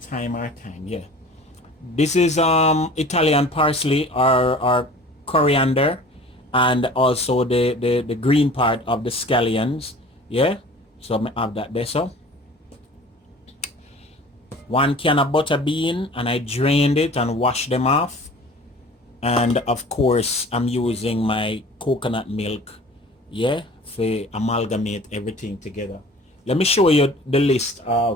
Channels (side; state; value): both; normal; correlation 0.44